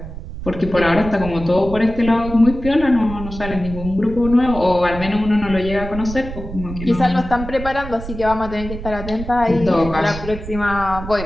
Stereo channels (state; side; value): noise; right; rumble, 10 dB below the sound